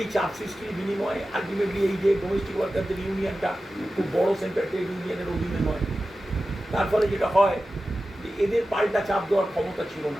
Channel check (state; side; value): normal; both; correlation 0.94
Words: চাপ সৃষ্টির বিনিময়ে আলটিমেটলি এই যে ডোমেস্টিক ওয়ার্কারদের ইউনিয়নটা খুব বড় সেন্টার ট্রেড ইউনিয়নের অধীনে নয়, তার ফলে যেটা হয় যে এদের পাল্টা চাপ দেওয়ার ক্ষমতা ছিল